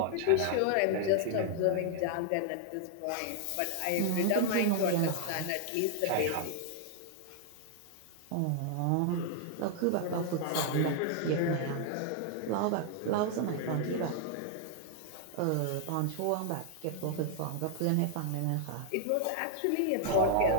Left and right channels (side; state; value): both; different; correlation 0.00